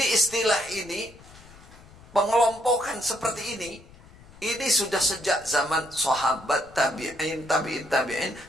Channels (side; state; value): left; noise; rumble, 22 dB below the sound